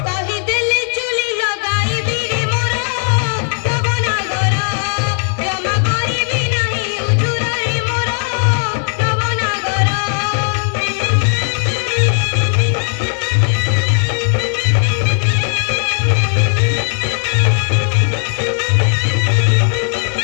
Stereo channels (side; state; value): right; silent; 57 dB below the other